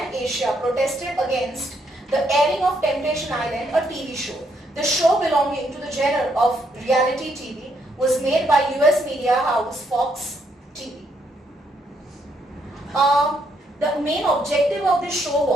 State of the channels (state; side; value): normal; both; correlation 0.74